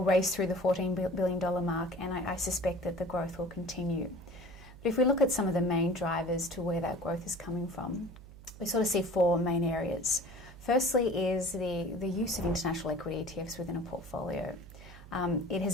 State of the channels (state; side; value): noise; right; hum, 18 dB below the sound